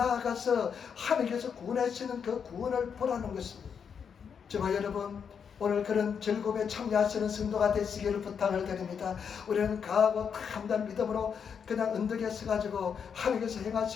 하나님께서 구원하시는 그 구원을 보라는 것입니다. 저와 여러분 오늘 그런 즐거움에 참여하시는 성도가 되시기를 부탁을 드립니다. 우리는 강하고 담대한 믿음으로 그냥 언덕에 서가지고 하나님께서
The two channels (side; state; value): right; quieter; 6.9 dB